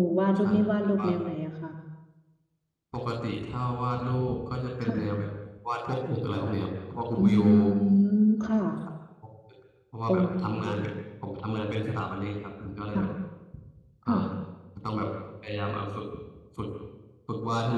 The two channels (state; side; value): identical; both; correlation 1.00